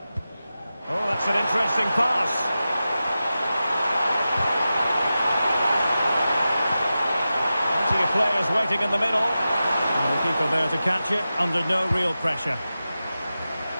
Oh, that's an interesting pass. Plenty of players waiting in the middle. And the keeper there to catch it under no real pressure.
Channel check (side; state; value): both; inverted; correlation -0.93